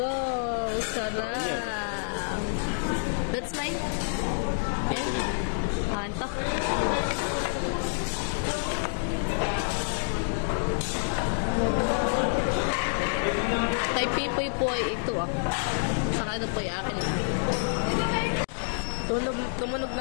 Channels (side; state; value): right; silent; digital silence